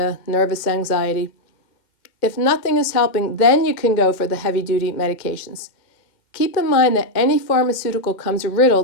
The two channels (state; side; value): late; right; 2.1 ms